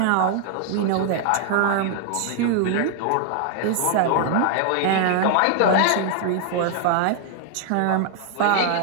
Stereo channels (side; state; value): both; different; correlation 0.00